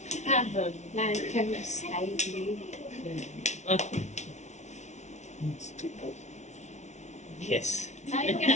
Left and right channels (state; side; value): late; right; 0.33 ms